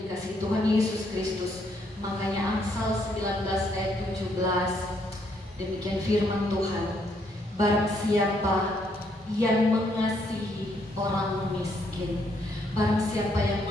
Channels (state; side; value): normal; both; correlation 0.72